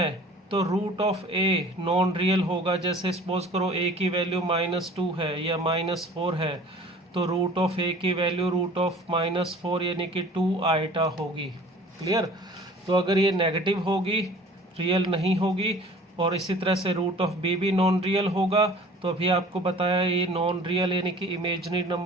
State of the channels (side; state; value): both; normal; correlation 0.47